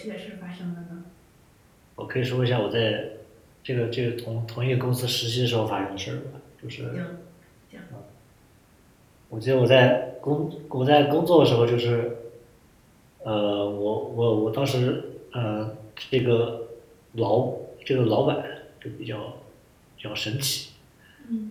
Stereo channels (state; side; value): identical; both; correlation 1.00